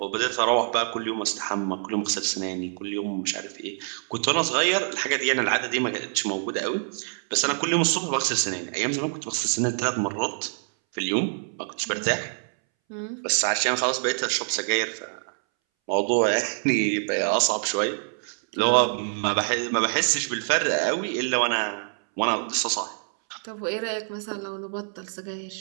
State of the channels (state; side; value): silent; left; 61 dB below the other